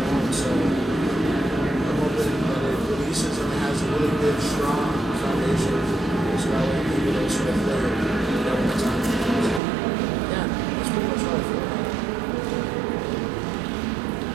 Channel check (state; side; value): drops out; left; at 9.6 s